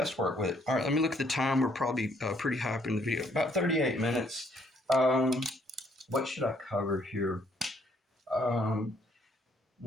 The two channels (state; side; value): normal; both; correlation 0.67